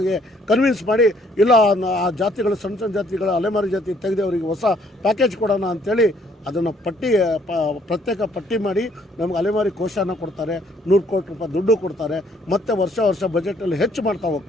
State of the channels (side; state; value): both; normal; correlation 0.65